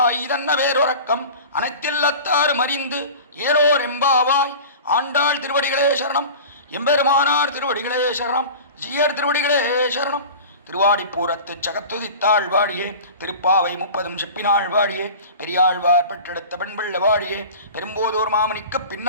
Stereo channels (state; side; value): inverted; both; correlation -0.36